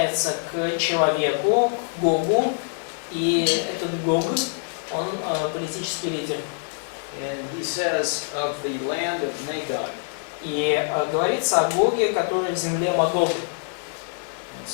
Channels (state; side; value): silent; right; 62 dB below the other